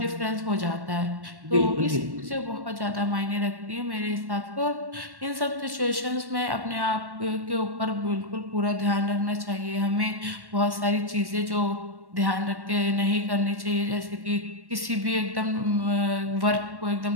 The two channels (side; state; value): left; late; 1.1 ms